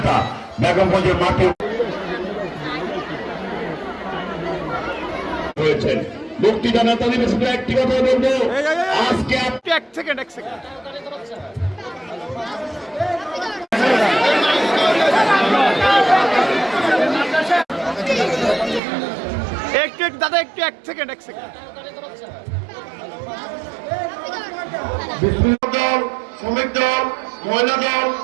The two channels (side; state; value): left; drops out; at 18.8 s